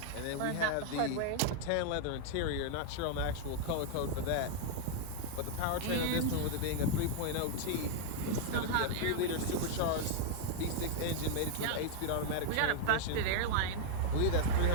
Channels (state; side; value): different; both; correlation 0.00